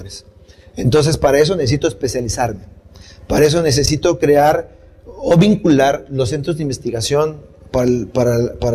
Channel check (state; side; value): identical; both; correlation 1.00